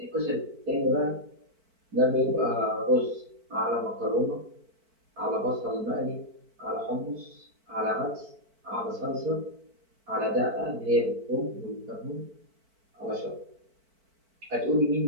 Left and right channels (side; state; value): left; late; 4.5 ms